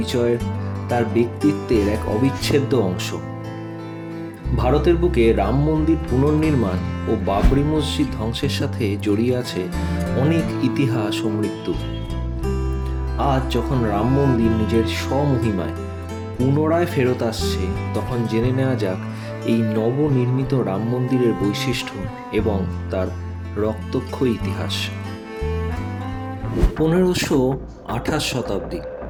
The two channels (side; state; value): both; identical; correlation 1.00